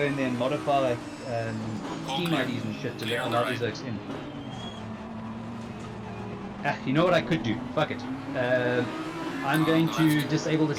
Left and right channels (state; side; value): identical; both; correlation 1.00